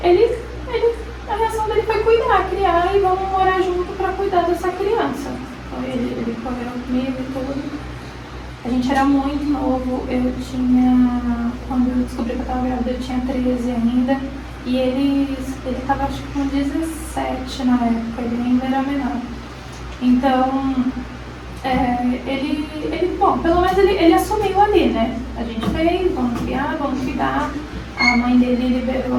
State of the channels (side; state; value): both; identical; correlation 1.00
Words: a reação dele foi cuidar, criar e vamos morar junto para cuidar dessa criança. Então ele correu comigo e tudo. A gente era muito novo, quando eu descobri que eu estava grávida, eu tinha 13 ainda. E ele estava acho que com 17 na época, ele ainda era menor. Então, bom, pelo menos ele assumiu ali, né? A gente fez, vamos criar, vamos cuidar. A mãe dele liberou